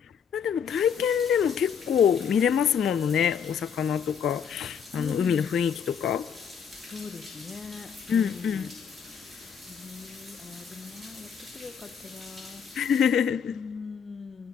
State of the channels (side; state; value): right; quieter; 7.4 dB